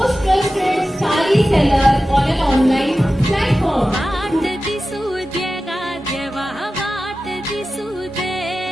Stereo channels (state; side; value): normal; both; correlation 0.94